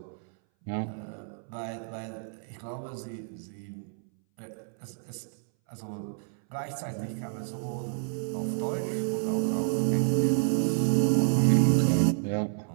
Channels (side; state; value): left; silent; 58 dB below the other